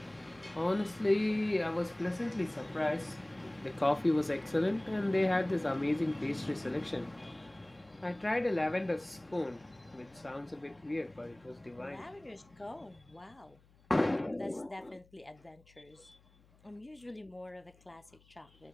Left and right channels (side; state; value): left; noise; hum, 29 dB below the sound